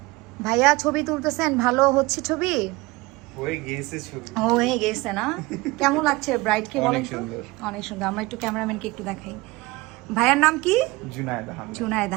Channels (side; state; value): left; quieter; 22.3 dB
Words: ভাইয়া ছবি তুলতেছেন, ভালো হচ্ছে ছবি? হয়ে গেছে না? কেমন লাগছে ব্রাইডকে বলেন তো? অনেক সুন্দর। আমরা একটু ক্যামেরাম্যানকে একটু দেখাই। ভাইয়ার নাম কি? জুনায়েদ